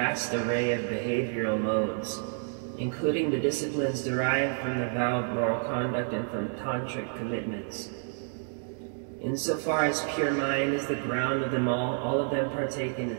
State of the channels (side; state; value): left; silent; 58 dB below the other